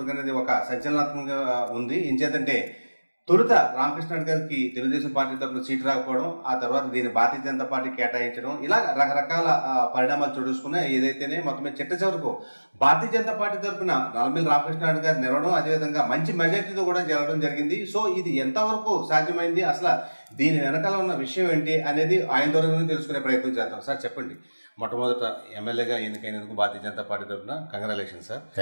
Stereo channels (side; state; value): both; inverted; correlation -1.00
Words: అనేది ఒక సంచలనాత్మకంగా ఉంది. ఇంచేతంటే తొలుత రామకృష్ణారెడ్డి గారికి తెలుగుదేశం పార్టీ తరఫున సీటు రాకపోవడం, ఆ తర్వాత దీన్ని భారతీయ జనతా పార్టీ కేటాయించడం, ఇలా రకరకాల పరిణామాలు చూసుకున్నాయి. ఏదైతేనే మొత్తం చిట్ట చివరకు భారతీయ జనతా పార్టీ తరఫున నల్లమిల్లి రామకృష్ణారెడ్డి గారు నిలవడం, అదేవిధంగా మంచి మెజార్టీతో కూడా జరగడం జరిగింది. సో ఇది ఎంతవరకు సాధ్యమైంది, అసలు దీని వెనకాల ఉన్న విషయం ఏంటి అనేది ఆయన ద్వారా తెలుసుకునే ప్రయత్నం చేద్దాం. సార్ చెప్పండి, మొట్టమొదట ఎమ్మెల్యేగా ఎన్నికైనందుకు భారతీయ జనతా పార్టీ తరఫున congratulation sir.